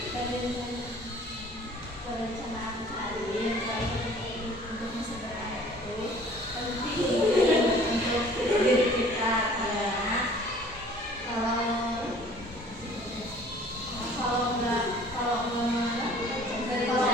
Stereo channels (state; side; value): normal; both; correlation 0.51